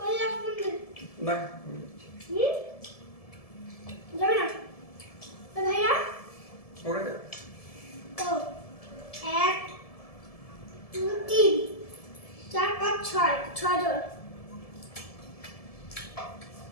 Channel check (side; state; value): right; late; 1.7 ms